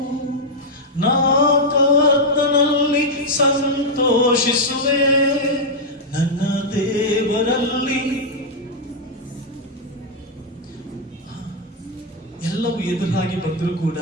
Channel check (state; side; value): normal; both; correlation -0.03